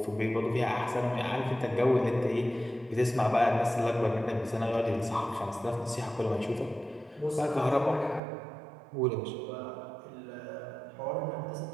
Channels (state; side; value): drops out; left; at 8.2 s